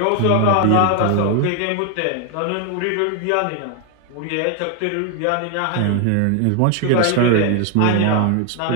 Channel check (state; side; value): different; both; correlation 0.01